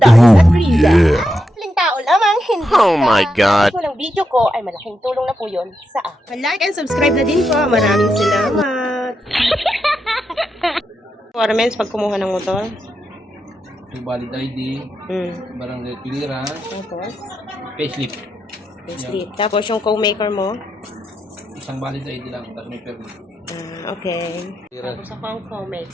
at Riza. Maling tao lamang, hindi Oh my God. Kung ang video ko ay malaking tulong na po yun sa akin. Like and subscribe na din po. Maraming salamat. Requirements pag kumuha ng motor. Yung valid ID, barangay clearance, Tapos, payslip. sleep. Tapos yung co-maker mo. Isang valid ID lang, tapos may permit. Okay. Clearance. Tapos ako ang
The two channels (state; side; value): normal; both; correlation 0.85